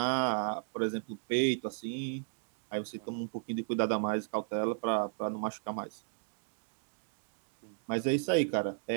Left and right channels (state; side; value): silent; left; digital silence